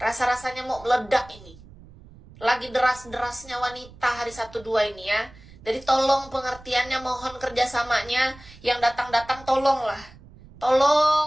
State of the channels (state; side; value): noise; right; rumble, 21 dB below the sound